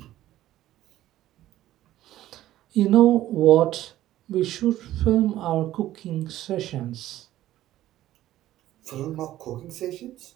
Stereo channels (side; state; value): left; quieter; 14.0 dB